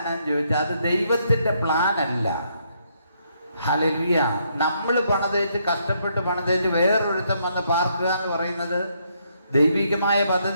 ചോദിച്ചാൽ അത് ദൈവത്തിൻ്റെ പ്ലാൻ അല്ല. ഹല്ലേലൂയ. നമ്മൾ പണിതേച്ച് കഷ്ടപ്പെട്ട് പണിതേച്ച് വേറൊരുത്തം വന്ന് പാർക്കുക എന്ന് പറയുന്നത് ദൈവികമായ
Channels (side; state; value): both; inverted; correlation -0.73